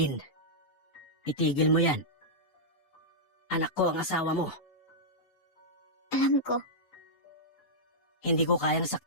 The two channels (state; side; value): late; right; 7.9 ms